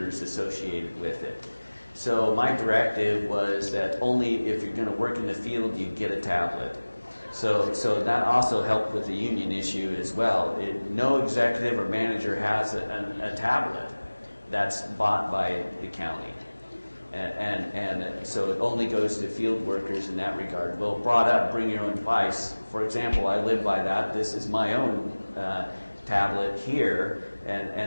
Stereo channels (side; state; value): both; inverted; correlation -1.00